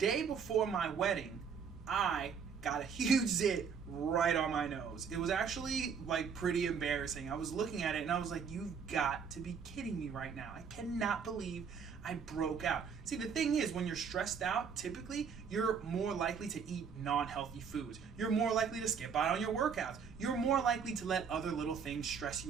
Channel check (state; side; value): quieter; left; 6.4 dB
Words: before my wedding, I got a huge zit right on my nose. It was actually like pretty embarrassing. I was looking at it and I was like, you've got to be kidding me right now. I cannot believe I broke out. See, the thing is, when you're stressed out, typically you're more likely to eat non-healthy foods. You're more likely to skip out on your workouts. You're more likely to let other little things stress